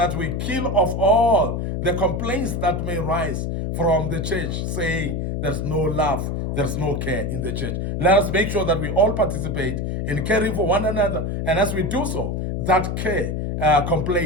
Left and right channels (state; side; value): noise; left; hum, 2 dB below the sound